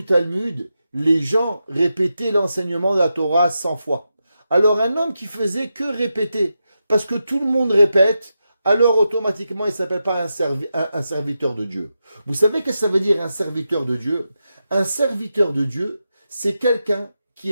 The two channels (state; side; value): inverted; both; correlation -0.88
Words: Talmud, les gens répétaient l'enseignement de la Torah 100 fois. Alors un homme qui faisait que répéter, parce que tout le monde répète, alors automatiquement il ne s'appelle pas un serviteur de Dieu. Vous savez ce que ça veut dire un serviteur de Dieu? Un serviteur de Dieu, c'est quelqu'un qui